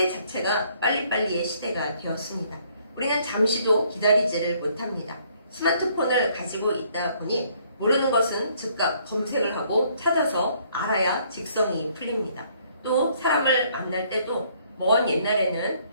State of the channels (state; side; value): inverted; both; correlation -0.65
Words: 자체가 빨리빨리의 시대가 되었습니다. 우리는 잠시도 기다리지를 못합니다. 스마트폰을 가지고 있다 보니 모르는 것은 즉각 검색을 하고 찾아서 알아야 직성이 풀립니다. 또 사람을 만날 때도 먼 옛날에는